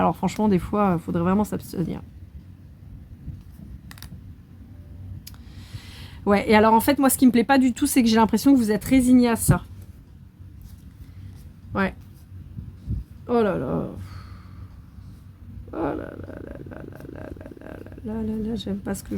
franchement des fois il faudrait vraiment s'abstenir. Ouais, et alors en fait moi ce qui me plaît pas du tout c'est que j'ai l'impression que vous êtes résigné à ça. Ouais. Oh là là. Oh là là là là là là là là là là, j'aime pas ce que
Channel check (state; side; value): identical; both; correlation 1.00